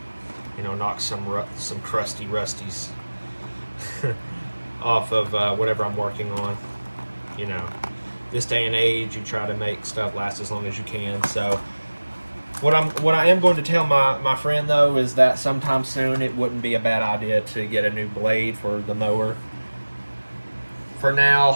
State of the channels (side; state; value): both; inverted; correlation -1.00